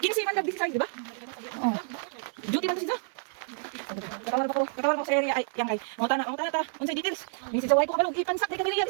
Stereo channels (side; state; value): left; silent; 59 dB below the other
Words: Kinsi man nag-busy size, di ba? Oo. Duty man to siya. Katawar pa ko sa area ay yang kay. Mo tana ta. Unsay details? Minsan sa way ko kabalo ipansak di kami riyan